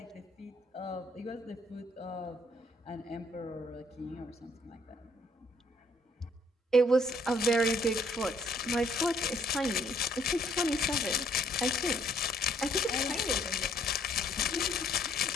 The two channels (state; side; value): normal; both; correlation 0.65